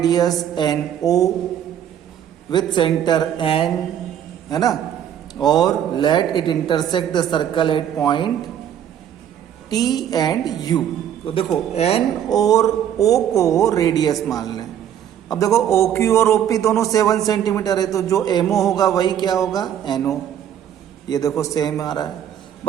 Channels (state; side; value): quieter; left; 9.9 dB